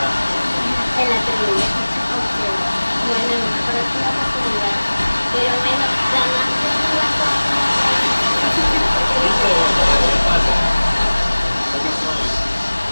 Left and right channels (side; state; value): both; inverted; correlation -1.00